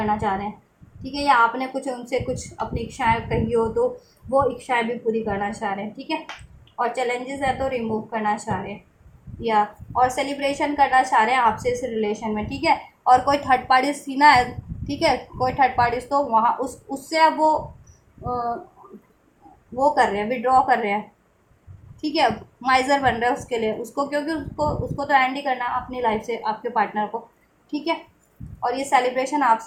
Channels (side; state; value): both; identical; correlation 1.00